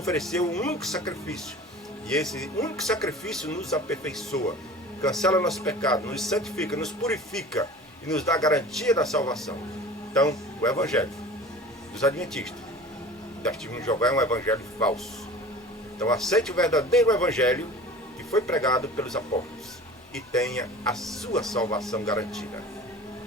um único sacrifício, e esse único sacrifício nos aperfeiçoa, cancela nosso pecado, nos santifica, nos purifica e nos dá a garantia da salvação. Então, o evangelho dos adventistas, das testemunhas de Jeová, é um evangelho falso. Então, aceite o verdadeiro evangelho que foi pregado pelos apóstolos e tenha a sua salvação garantida.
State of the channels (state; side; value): normal; both; correlation 0.40